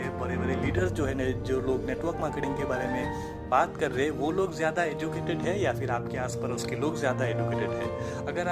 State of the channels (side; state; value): both; identical; correlation 1.00